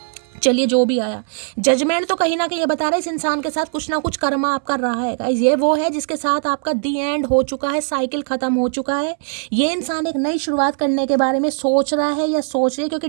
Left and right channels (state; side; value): silent; left; 66 dB below the other